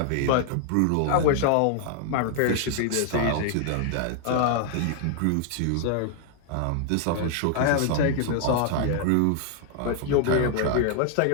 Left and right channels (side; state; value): both; different; correlation 0.00